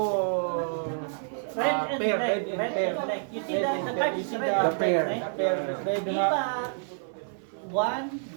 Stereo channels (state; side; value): silent; left; 55 dB below the other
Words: pair, red and pair. You see the card is red. The pair. Red Di nga. ba?